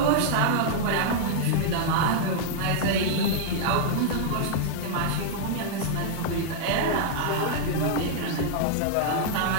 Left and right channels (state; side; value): different; both; correlation -0.01